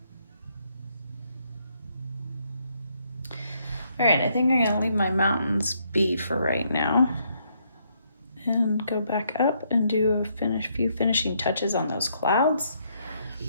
All right, I think I'm gonna leave my mountains be for right now and go back up and do a few finishing touches on those clouds.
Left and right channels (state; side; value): inverted; both; correlation -0.73